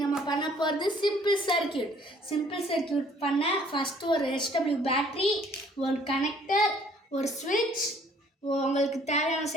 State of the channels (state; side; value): normal; both; correlation 0.59